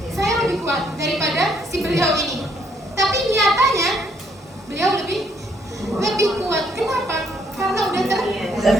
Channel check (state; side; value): normal; both; correlation 0.69